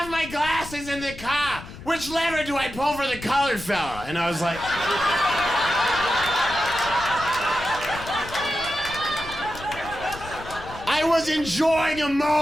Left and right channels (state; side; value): noise; left; rumble, 14 dB below the sound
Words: my glasses in the car. Which lever do I pull for the colored fella? And I was like... I was enjoying a